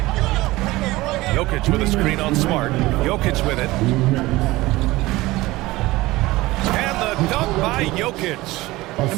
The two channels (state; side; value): quieter; left; 19.3 dB